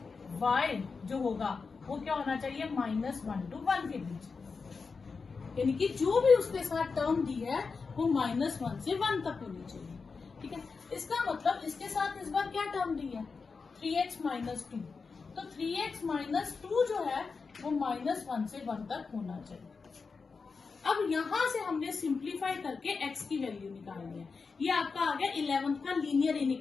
y जो होगा वो क्या होना चाहिए, -1 to 1 के बीच, यानी कि जो भी उसके साथ टर्म दी है वो -1 से 1 तक होनी चाहिए। ठीक है, इसका मतलब इसके साथ इस बार क्या टर्म दी है, 3x - 2, तो 3x - 2 जो है वो -1 से 1 तक होना चाहिए। अब यहां से हमने सिंप्लीफाई करके x की वैल्यू निकालनी है। ये आपका आ गया 11th का लीनियर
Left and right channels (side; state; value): right; quieter; 4.8 dB